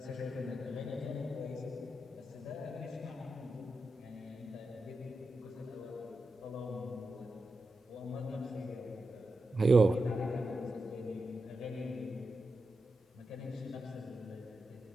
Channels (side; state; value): both; normal; correlation 0.89